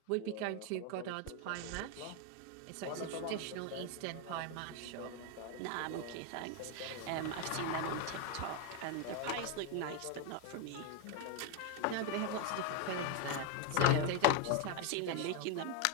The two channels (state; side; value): different; both; correlation 0.01